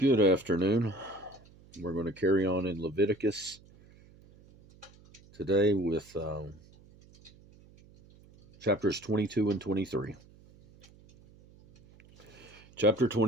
afternoon. We're going to carry on in Leviticus today with chapters 22 and 23. Chapter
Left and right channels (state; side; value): noise; right; hum, 25 dB below the sound